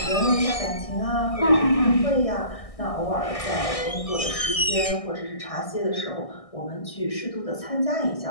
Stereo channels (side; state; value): right; late; 1.6 ms